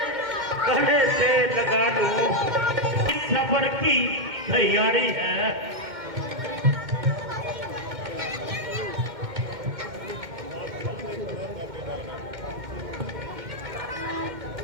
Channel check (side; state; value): left; late; 2.1 ms